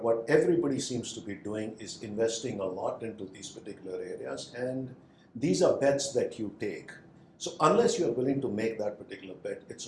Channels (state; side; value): identical; both; correlation 1.00